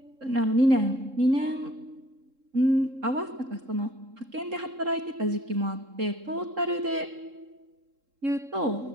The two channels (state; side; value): late; left; 3.7 ms